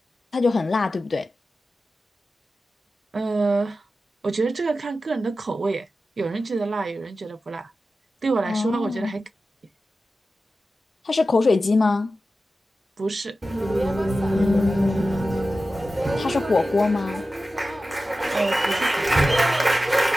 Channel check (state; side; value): normal; both; correlation 0.93